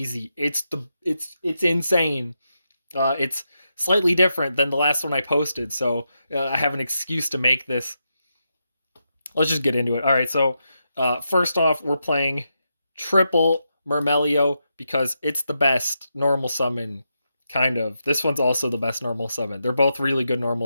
It's insane. It's slightly different than the last one I posted, so I have an excuse to make this. Let's just get into it. All right, so first off, we're playing triple Mermelio because it's the best normal summon, kind of. This one's also the best normal summon. They're both really good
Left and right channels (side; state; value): both; inverted; correlation -0.85